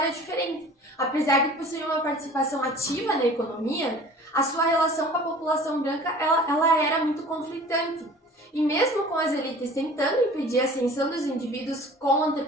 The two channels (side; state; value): both; normal; correlation 0.45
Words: diferente. Apesar de possuir uma participação ativa na economia, a sua relação com a população branca ela era muito conflitante. E mesmo com as elites tentando impedir a ascensão dos indivíduos com